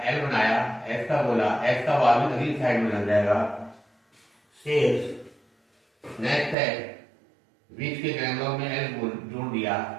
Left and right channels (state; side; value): drops out; left; at 6.6 s